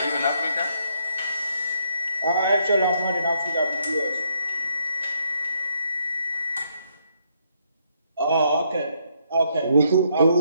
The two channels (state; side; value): inverted; both; correlation -0.72